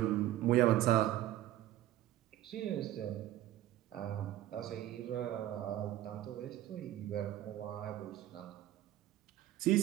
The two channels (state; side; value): quieter; left; 13.8 dB